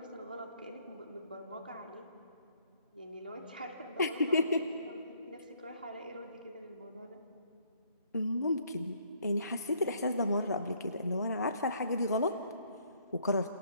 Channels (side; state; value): both; inverted; correlation -0.65